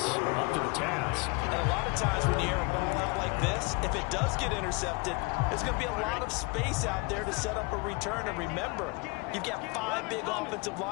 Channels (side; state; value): right; quieter; 28.2 dB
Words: up to the task. And a lot of times when you air a ball out like this, if it does get intercepted, there's going to be a lot of space out there to set up a return. And remember, you've got 5 big offensive